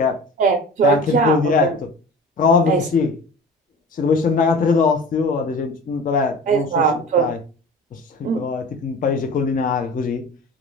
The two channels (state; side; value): normal; both; correlation 0.37